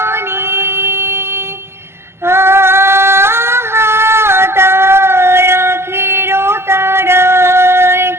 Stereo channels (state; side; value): late; left; 0.12 ms